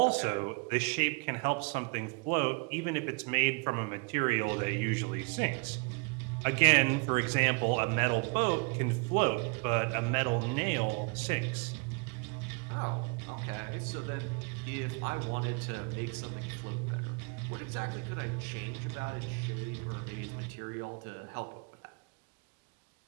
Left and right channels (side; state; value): left; quieter; 32.2 dB